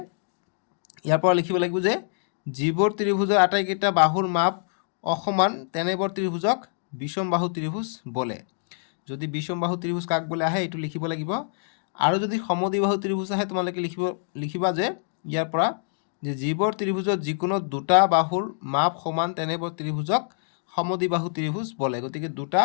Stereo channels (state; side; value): silent; right; digital silence